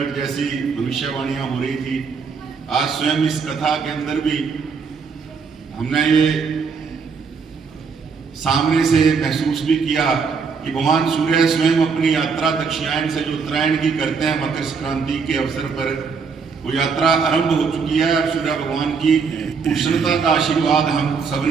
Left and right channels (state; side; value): quieter; left; 5.5 dB